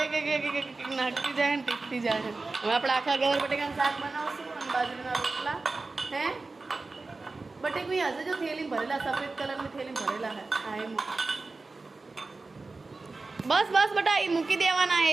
એક નાખતી જાય ને ટીકતી જાય. હવે આપણે આખા ગવાર બટેકાનું શાક બનાવશું અને બાજરીના રોટલા. હે બટેકું હશે જો થેલી ભરેલા, સફેદ કલરની થેલી ભરેલા હે. હા એ બસ બસ બટા એ મૂકી દેવાના. એ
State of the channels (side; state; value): left; quieter; 3.6 dB